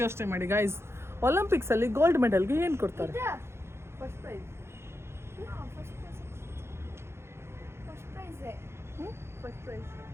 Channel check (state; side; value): late; left; 0.12 ms